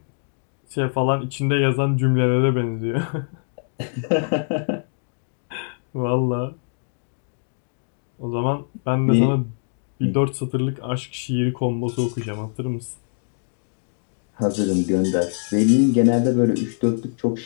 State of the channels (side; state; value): right; silent; digital silence